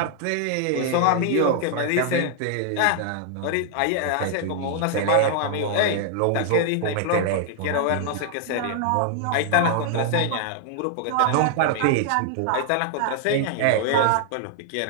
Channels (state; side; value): different; both; correlation 0.00